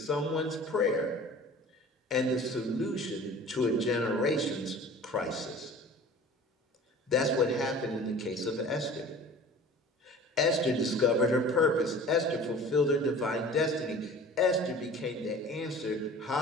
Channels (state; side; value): normal; both; correlation 0.43